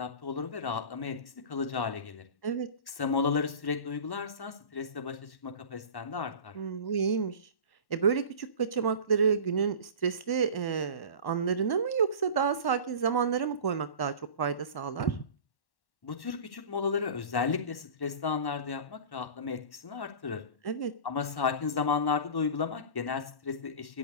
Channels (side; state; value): right; late; 1.1 ms